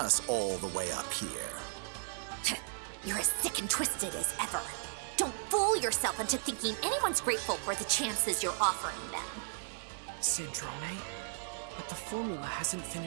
all the way up here. You're as sick and twisted as ever. Don't fool yourself into thinking anyone's grateful for the chances you're offering them. Sandrone? But the formula hasn't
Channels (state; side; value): silent; left; digital silence